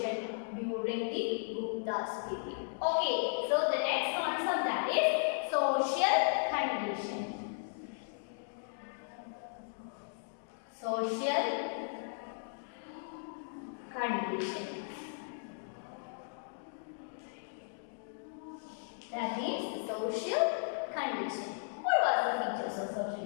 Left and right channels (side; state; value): right; silent; digital silence